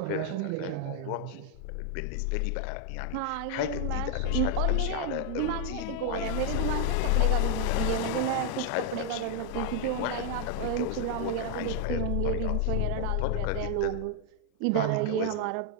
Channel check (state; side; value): different; both; correlation 0.00